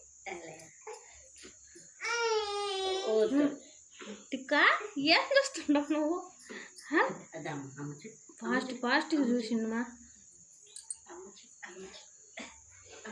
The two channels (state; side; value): identical; both; correlation 1.00